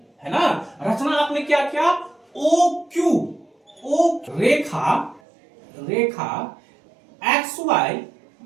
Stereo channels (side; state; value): left; drops out; at 5.2 s